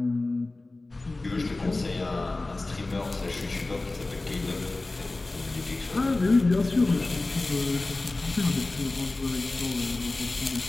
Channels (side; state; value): right; quieter; 3.1 dB